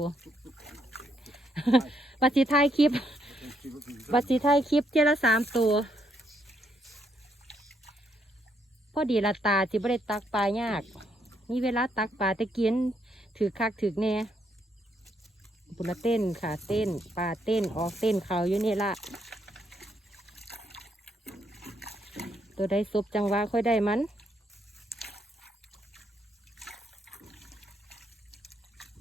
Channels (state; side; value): normal; both; correlation 0.75